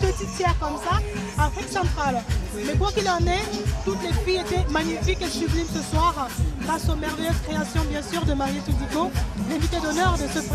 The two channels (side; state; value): both; identical; correlation 1.00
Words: tiers comme ça, Afrique centrale. Mais quoi qu'il en est, toutes les filles étaient magnifiques et sublimes ce soir, grâce aux merveilleuses créations bien sûr de Marie Toudico, l'invité d'honneur de ce